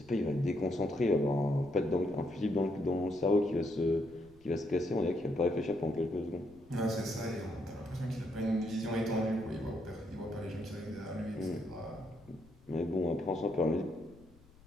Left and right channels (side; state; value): left; noise; rumble, 26 dB below the sound